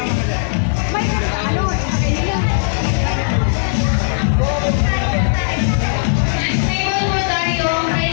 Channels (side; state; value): right; silent; digital silence